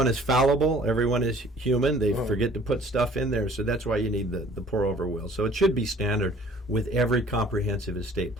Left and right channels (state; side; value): normal; both; correlation 0.53